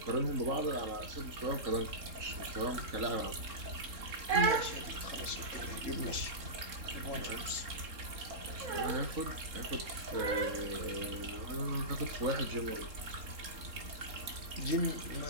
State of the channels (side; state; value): left; late; 3.7 ms